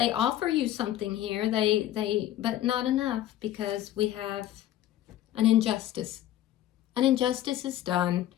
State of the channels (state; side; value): quieter; right; 12.9 dB